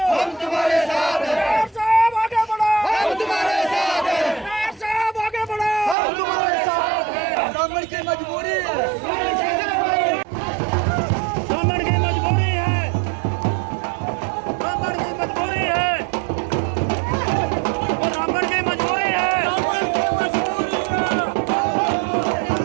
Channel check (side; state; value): left; drops out; at 6.0 s